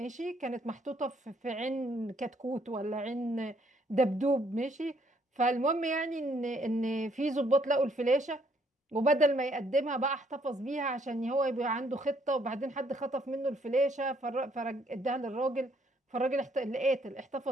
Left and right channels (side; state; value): both; normal; correlation 0.68